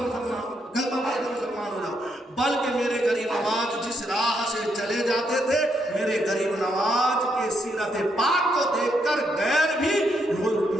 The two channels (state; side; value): normal; both; correlation 0.77